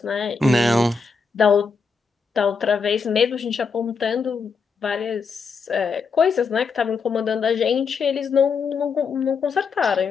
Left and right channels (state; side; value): quieter; right; 5.2 dB